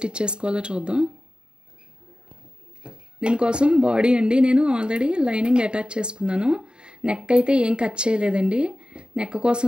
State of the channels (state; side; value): late; left; 0.050 ms